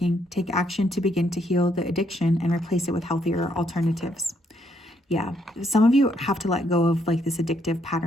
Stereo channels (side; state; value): both; normal; correlation 0.73